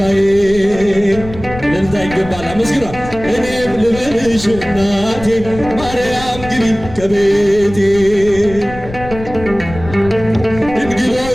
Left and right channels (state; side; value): noise; left; rumble, 13 dB below the sound